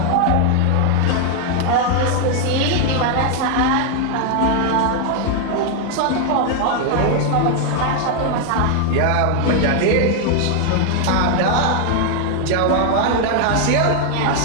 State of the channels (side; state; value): both; different; correlation 0.00